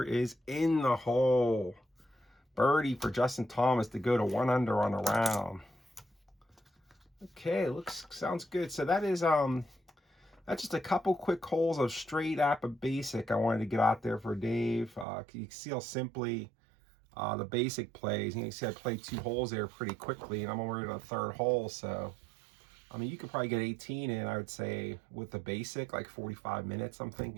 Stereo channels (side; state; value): left; drops out; at 15.1 s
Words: is in the hole. Birdie for Justin Thomas to go to 1 under on the round. Okay, sounds good. So that is that's just a couple quick holes of straight APBA basic I wanted to get out there for Dave. You can see how simply the basic plays. You can see I played 2 holes there pretty quickly, and I'm already on the 3rd hole. So I mean, you could probably get 18 in, I would say, with the basic, like 45 minutes, I'm